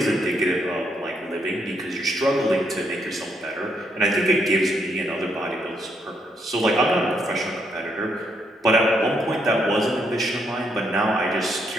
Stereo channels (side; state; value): both; normal; correlation 0.75